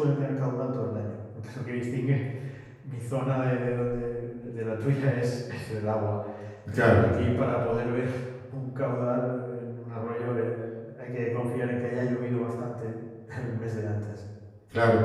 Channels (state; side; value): identical; both; correlation 1.00